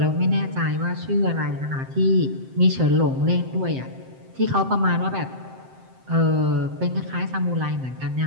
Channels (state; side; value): late; left; 7.7 ms